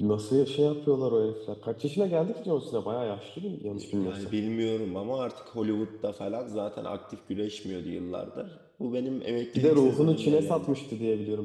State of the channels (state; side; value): identical; both; correlation 1.00